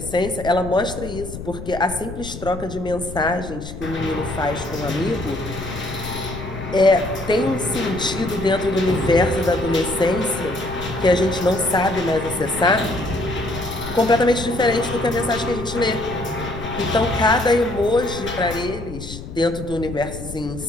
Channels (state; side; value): noise; left; rumble, 10 dB below the sound